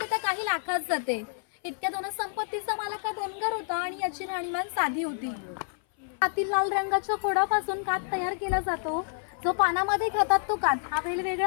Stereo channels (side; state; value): right; silent; 57 dB below the other